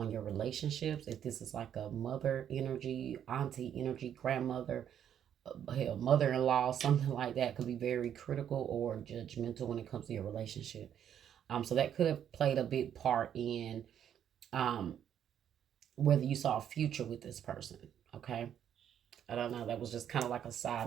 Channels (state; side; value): quieter; left; 9.5 dB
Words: your relationships. If this is like a mother energy, auntie energy, grandmother, hell, mother-in-law, something like that, could be very critical or judgmental when it comes to your relationship. So that could have played a big part in whether you saw a future with this person. Okay. I don't know. That was just kind of like a